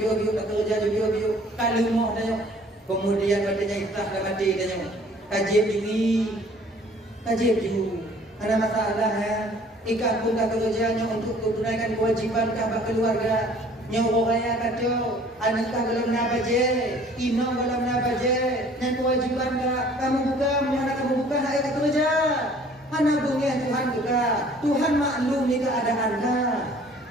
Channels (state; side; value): normal; both; correlation 0.54